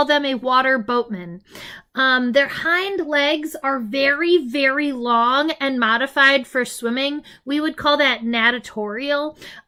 them a water boatman. Their hind legs are very, very long and modified for swimming. We would call that natatorial.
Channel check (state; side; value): identical; both; correlation 1.00